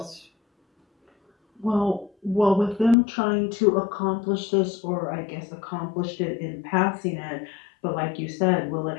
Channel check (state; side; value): drops out; right; at 3.0 s